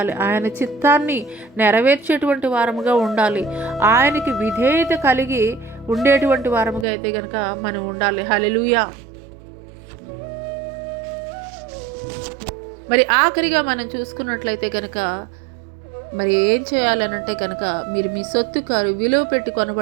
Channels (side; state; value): left; drops out; at 6.9 s